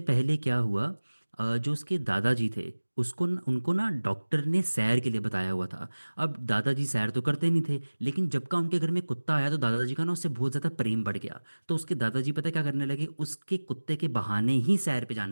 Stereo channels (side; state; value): both; inverted; correlation -1.00